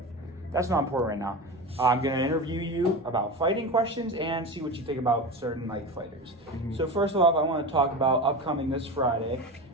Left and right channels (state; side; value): normal; both; correlation 0.26